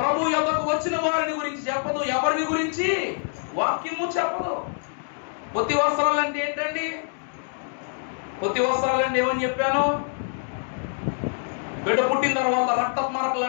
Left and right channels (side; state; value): right; silent; 57 dB below the other